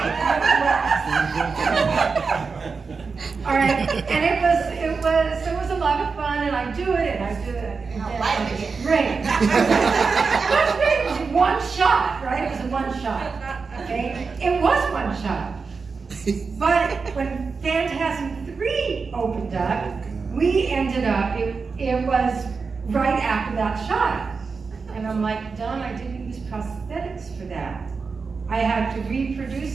out of wax. All right, and it was a lot of fun, and I do it, and I do it. Great. It was one shot, right? It was a one shot, okay? It was one shot. But when Phantasm 3 opened up, we ended up, it was right after that shot. And I'm like, Don, I didn't use prosthetics for that. I had to reproduce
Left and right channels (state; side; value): quieter; left; 4.8 dB